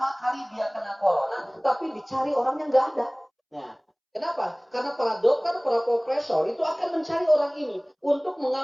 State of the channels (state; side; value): identical; both; correlation 1.00